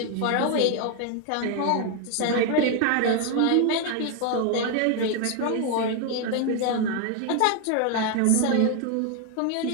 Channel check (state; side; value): different; both; correlation 0.01